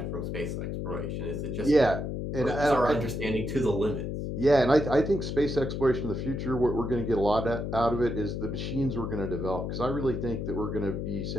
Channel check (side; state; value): left; noise; hum, 3 dB below the sound